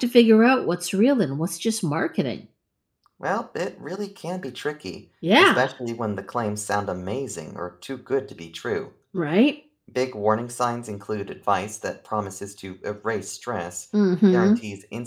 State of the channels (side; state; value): both; identical; correlation 1.00